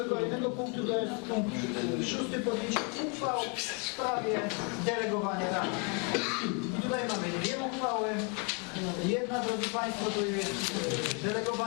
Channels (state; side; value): quieter; right; 35.5 dB